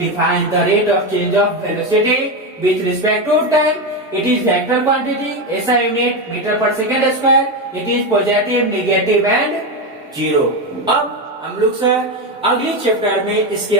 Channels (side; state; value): both; normal; correlation 0.13